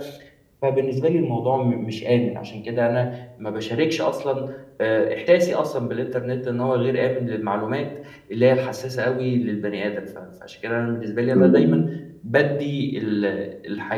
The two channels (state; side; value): identical; both; correlation 1.00